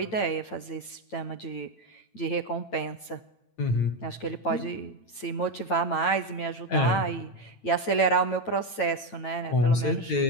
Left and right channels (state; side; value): late; right; 9.0 ms